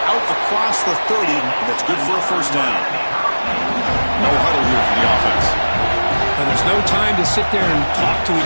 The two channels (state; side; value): inverted; both; correlation -1.00